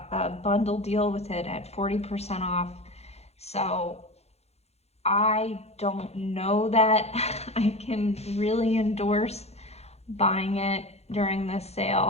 a bundle deal with it at 40% off. So I don't know that I can really endorse buying it during this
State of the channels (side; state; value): right; late; 0.31 ms